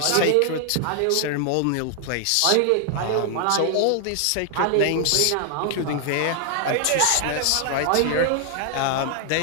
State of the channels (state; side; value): different; both; correlation 0.00